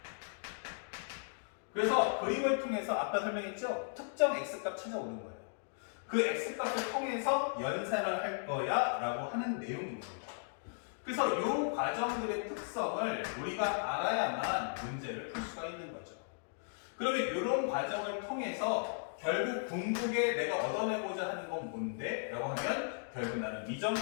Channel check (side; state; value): right; silent; digital silence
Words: 그래서 그림을 통해서 아까 설명했죠? 특정 x값 찾아오는 거예요. 그 x값을 통해서 연산을 할 거야 라고 하는 내용인 겁니다. 그래서 이 과정들의 특성을 우리가 알아야만 문제를 풀 수가 있는 거죠. 그러면 이런 과정을 통해서 결국 궁극에 내가 얻어내고자 하는 건 뭔데? 라고 하면 결국 나는